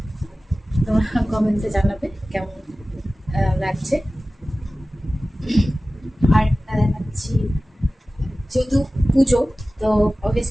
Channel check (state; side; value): normal; both; correlation 0.96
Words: তোমরা কমেন্টে জানাবে কেমন লাগছে। আর একটা দেখাচ্ছি, যেহেতু পুজো তো